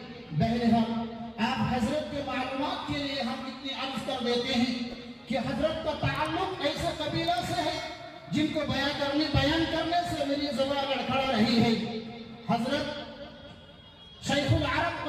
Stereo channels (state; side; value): identical; both; correlation 1.00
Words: بہرحال آپ حضرت کے معلومات کے لیے ہم اتنی عرض کر دیتے ہیں کہ حضرت کا تعلق ایسے قبیلہ سے ہے جن کو بیان کرنے سے میری زبان لڑکھڑا رہی ہے۔ حضرت شیخ العرب